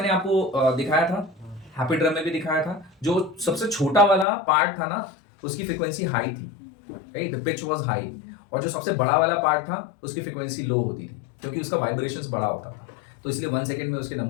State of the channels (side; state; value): right; drops out; at 4.2 s